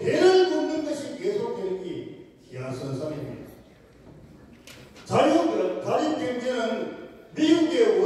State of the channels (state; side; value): identical; both; correlation 1.00